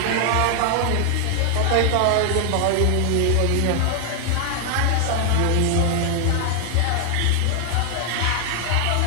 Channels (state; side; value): different; both; correlation 0.00